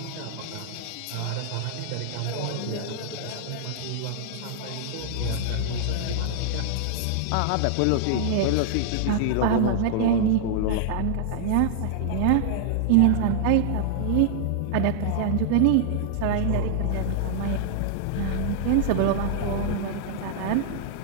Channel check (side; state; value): both; different; correlation -0.01